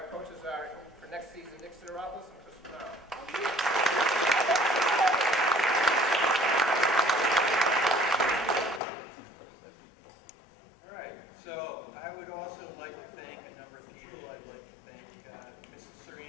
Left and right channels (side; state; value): right; drops out; at 8.8 s